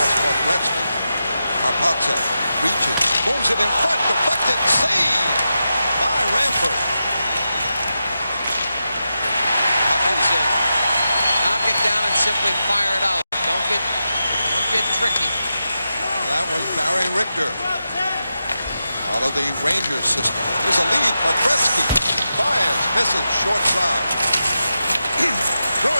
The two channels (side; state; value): both; inverted; correlation -0.89